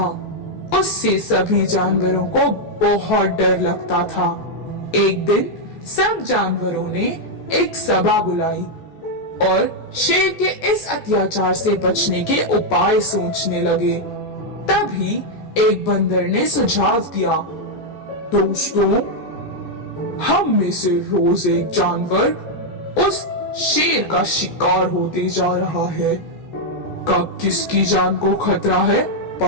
उससे सभी जानवरों को बहुत डर लगता था। एक दिन सब जानवरों ने एक सभा बुलाई और शेर के इस अत्याचार से बचने के उपाय सोचने लगे। तभी एक बंदर ने सुझाव दिया, दोस्तों, हम में से रोज एक जानवर उस शेर का शिकार होते जा रहा है। कब किसकी जान को खतरा है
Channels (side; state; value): right; late; 14 ms